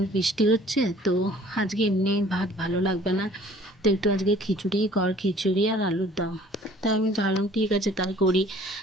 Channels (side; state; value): both; normal; correlation 0.53